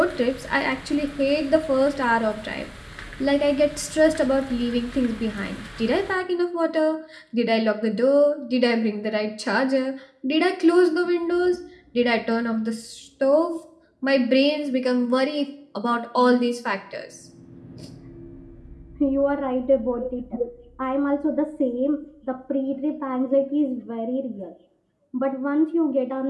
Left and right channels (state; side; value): identical; both; correlation 1.00